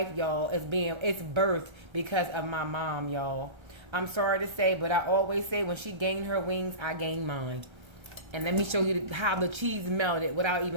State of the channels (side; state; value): left; late; 1.3 ms